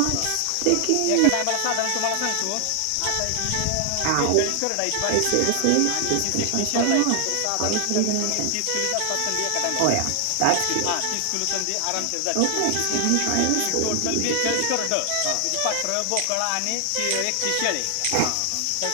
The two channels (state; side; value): different; both; correlation 0.00